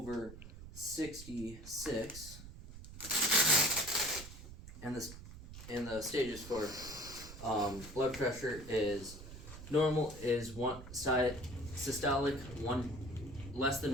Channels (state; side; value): noise; right; rumble, 14 dB below the sound